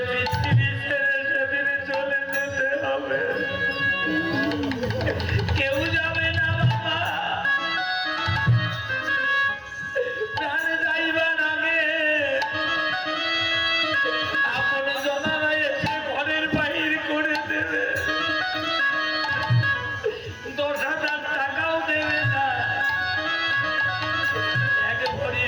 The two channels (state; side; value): identical; both; correlation 1.00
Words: পৃথিবী ছেড়ে সেদিন চলে যেতে হবে কেউ যাবে না বাবা প্রাণ যাইবার আগে আপন জনারা এসে ঘরের বাহির করে দেবে 10,000 টাকাও দেবে না এক ভরি